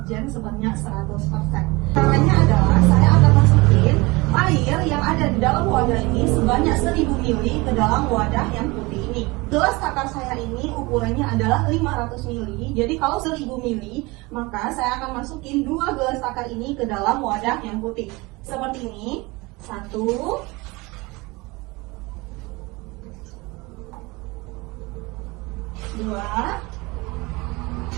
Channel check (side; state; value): left; quieter; 24.0 dB